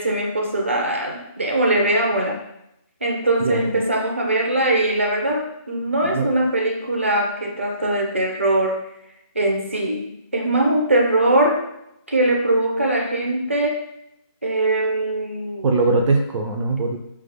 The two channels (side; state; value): both; inverted; correlation -0.58